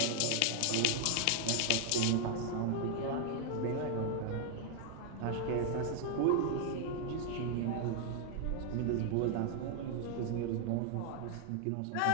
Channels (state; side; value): different; both; correlation 0.00